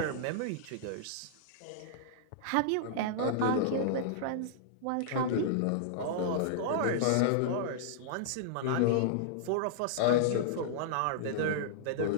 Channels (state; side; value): different; both; correlation -0.02